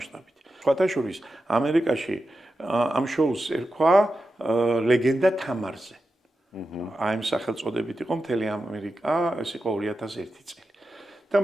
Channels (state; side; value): normal; both; correlation 0.90